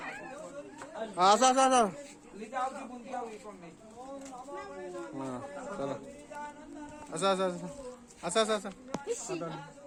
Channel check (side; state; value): both; identical; correlation 1.00